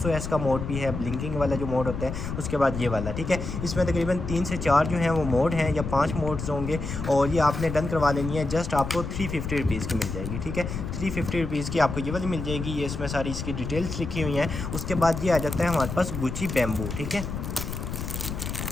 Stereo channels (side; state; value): left; noise; rumble, 5 dB below the sound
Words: का मोड भी है, ब्लिंकिंग वाला जो मोड होता है। उसके बाद ये वाला, ठीक है। इसमें तकरीबन 3 से 4 जो हैं वो मोड हैं, या 5 मोड्स होंगे। और ये आपने डन करवा लेनी है। जस्ट आपको 350 रुपीज़ की मिल जाएगी, ठीक है। 350 रुपीज़ की आपको ये वाली मिल जाएगी। ये इसमें सारी इसकी डिटेल्स लिखी हुई हैं। उसके बाद ये आ जाता है हमारे पास गुची बैम्बू, ठीक है।